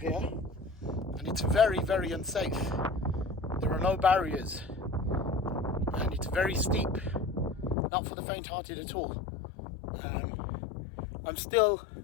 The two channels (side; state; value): right; drops out; at 7.8 s